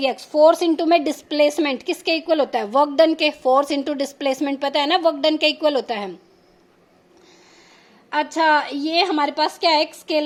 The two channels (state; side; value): identical; both; correlation 1.00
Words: force into में डिस्प्लेसमेंट किसके इक्वल होता है, वर्क डन के। फोर्स इंटू डिस्प्लेसमेंट पता है ना, वर्क डन के इक्वल होता है। अच्छा, ये हमारे पास क्या है, एक